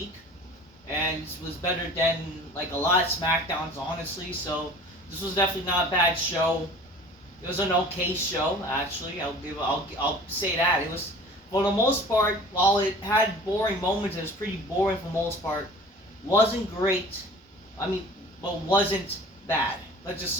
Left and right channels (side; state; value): both; normal; correlation 0.44